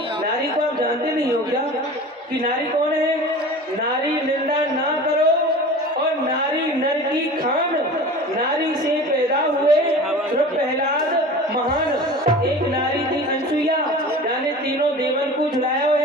नारी को आप जानते नहीं हो क्या कि नारी कौन है? नारी निंदा ना करो और नारी नर की खान। नारी से पैदा हुए प्रहलाद महान। एक नारी थी अनसुईया, जाने तीनों देवन को झुलायो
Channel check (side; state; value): both; normal; correlation 0.37